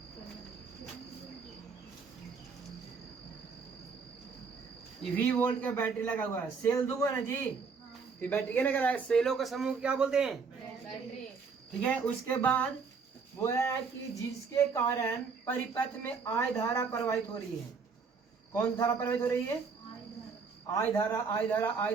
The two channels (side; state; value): left; quieter; 5.2 dB